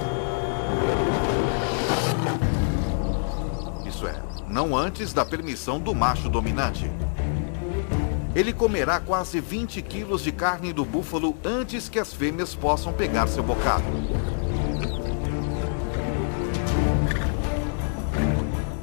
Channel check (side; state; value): right; silent; digital silence